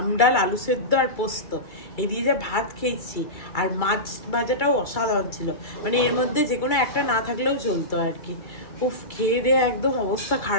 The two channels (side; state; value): right; late; 2.3 ms